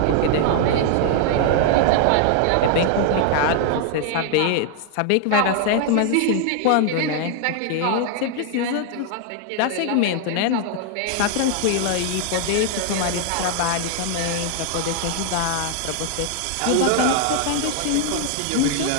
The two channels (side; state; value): both; different; correlation 0.00